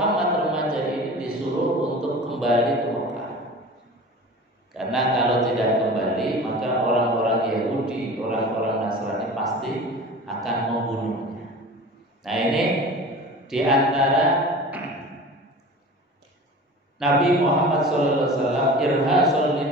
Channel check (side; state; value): both; normal; correlation 0.38